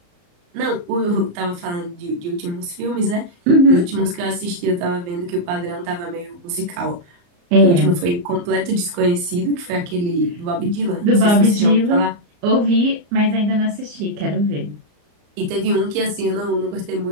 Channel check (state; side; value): late; left; 34 ms